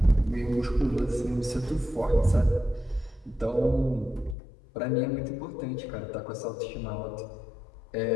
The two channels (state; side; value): drops out; right; at 4.4 s